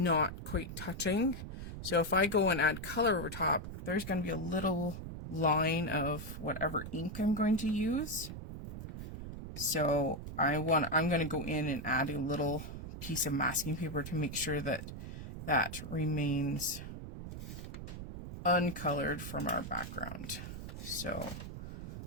quite touching. So if I go and add color over top, there's going to be a little line of whatever ink I'm going to use. So I'm going to go in and add a little piece of masking paper to make sure that that remains uncolored from our background. So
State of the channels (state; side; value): noise; right; rumble, 8 dB below the sound